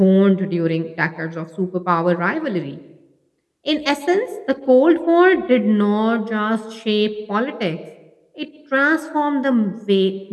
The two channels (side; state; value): both; identical; correlation 1.00